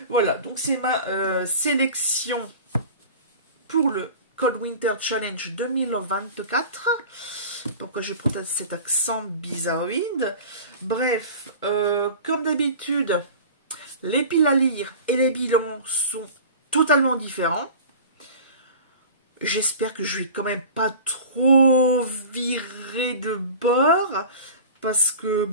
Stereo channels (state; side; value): inverted; both; correlation -0.37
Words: Voilà, donc c'est ma sélection pour le Cold Winter Challenge 2024. Pourquoi je prends cet accent bizarroïde? Bref, comme d'habitude, les piles à lire et les bilans sont totalement différents. J'espère que je vais quand même pas trop virer de bord. Parce